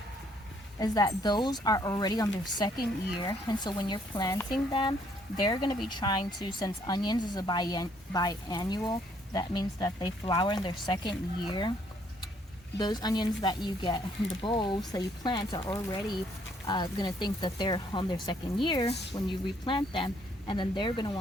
is that those are already on their second year, and so when you're planting them, they're going to be trying to, since onions is a biannual, that means that they flower in their second year. Those onions that you get in the bulbs that you plant are already going to think that they're on their second year when you replant them, and then they're going to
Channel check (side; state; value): both; normal; correlation 0.67